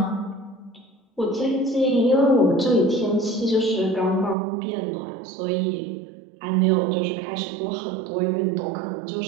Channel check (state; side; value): drops out; left; at 4.4 s